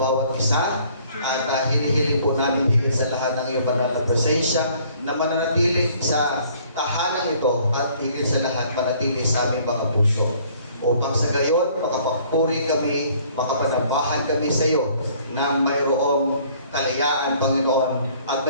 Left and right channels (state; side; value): inverted; both; correlation -0.58